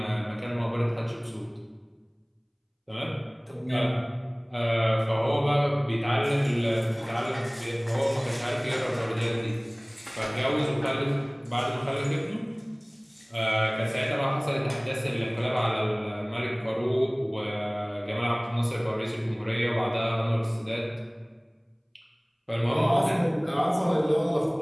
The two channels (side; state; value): both; identical; correlation 1.00